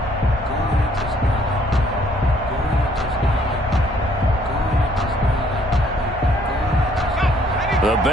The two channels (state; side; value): normal; both; correlation 0.64